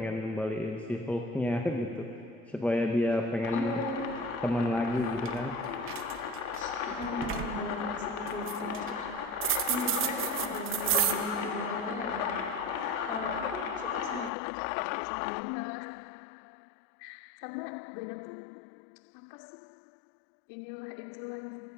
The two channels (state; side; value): drops out; right; at 14.3 s